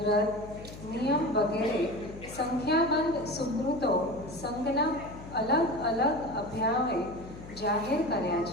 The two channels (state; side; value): noise; left; hum, 14 dB below the sound